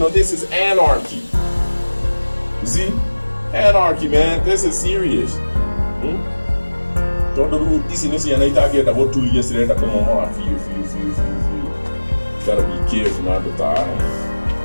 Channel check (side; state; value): both; inverted; correlation -1.00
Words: this is anarchy you see anarchy, man. This is serious. Don't do this in this year. I talked about 2 years later. Come on, feel. Gotta be careful not to die.